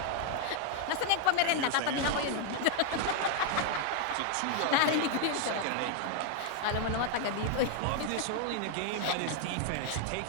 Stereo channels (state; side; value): different; both; correlation 0.00